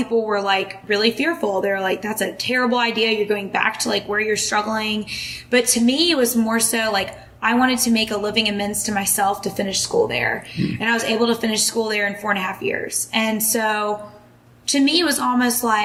were like really fearful. They're like, that's a terrible idea. You're going back to like where you're struggling. But to me, it was more so like, I wanted to make a living amends to myself to finish school there. And I was able to finish school there in 4.5 years. And so to me, it was almost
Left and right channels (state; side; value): identical; both; correlation 1.00